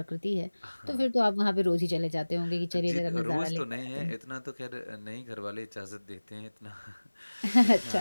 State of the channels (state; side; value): inverted; both; correlation -1.00